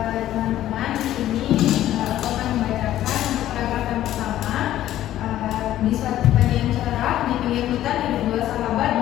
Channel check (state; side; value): quieter; right; 13.1 dB